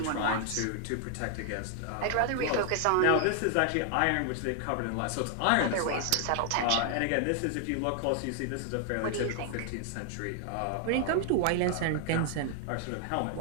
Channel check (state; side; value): different; both; correlation 0.00